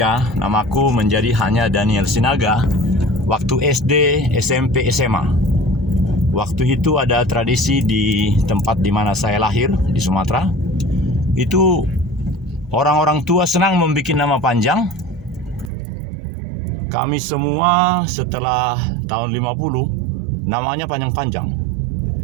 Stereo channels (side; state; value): left; drops out; at 15.7 s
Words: namaku menjadi hanya Daniel Sinaga waktu SD, SMP, SMA. Waktu itu ada tradisi di tempat di mana saya lahir di Sumatera. Itu orang-orang tua senang membuat nama panjang. Kami semua setelah tahun 50 namanya panjang-panjang.